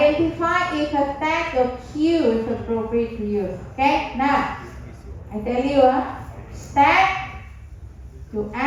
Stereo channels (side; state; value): both; identical; correlation 1.00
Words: if a tag or queue is appropriate to use. Okay? Now, I tell you, stack, you